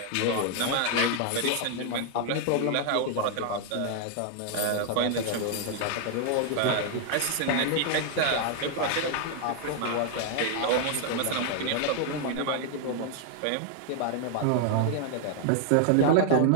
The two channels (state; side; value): different; both; correlation 0.00